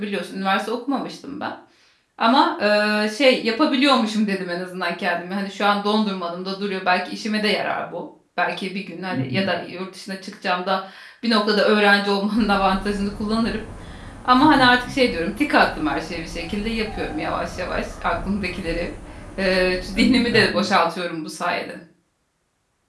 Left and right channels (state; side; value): identical; both; correlation 1.00